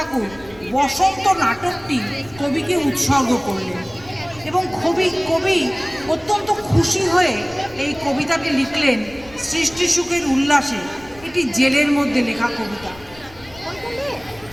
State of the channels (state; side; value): noise; left; rumble, 22 dB below the sound